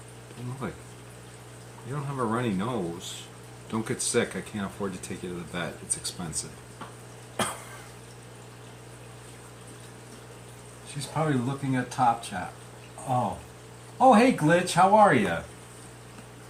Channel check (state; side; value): identical; both; correlation 1.00